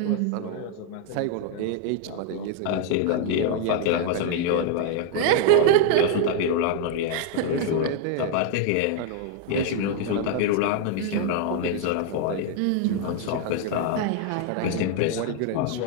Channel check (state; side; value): different; both; correlation 0.00